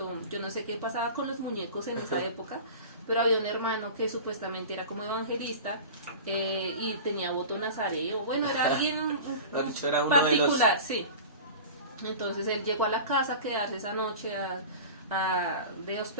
yo no sé qué pasaba con los muñecos en esa época, pero había un hermano que supuestamente era como evangelista y tenía voto nazareo, bueno, era alguien Era uno particular, sí. Entonces él llegó a la casa a quedarse esa noche de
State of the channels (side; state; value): both; inverted; correlation -0.35